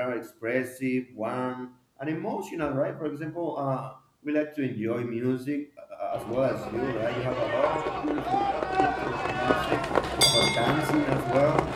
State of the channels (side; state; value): both; identical; correlation 1.00